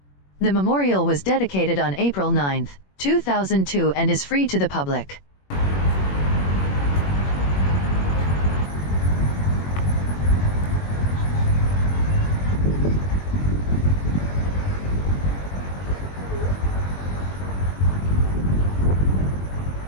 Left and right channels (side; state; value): right; late; 21 ms